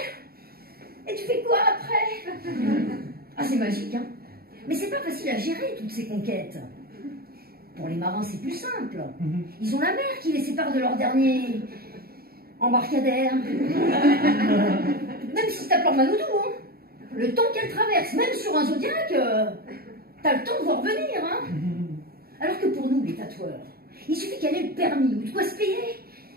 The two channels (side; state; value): left; late; 0.44 ms